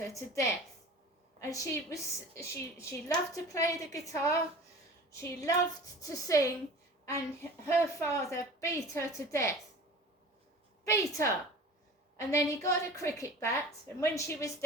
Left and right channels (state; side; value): normal; both; correlation 0.40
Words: to death. And she loved to play the guitar, she loved to sing, and her father beat her to death. Beat her! And then he got a cricket bat, and when she was